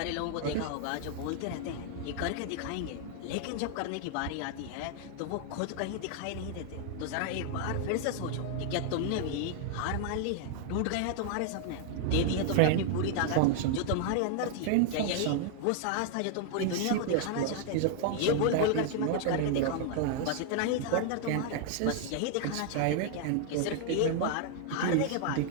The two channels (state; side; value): different; both; correlation 0.00